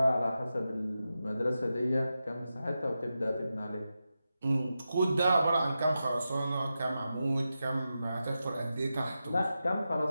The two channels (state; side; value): inverted; both; correlation -0.90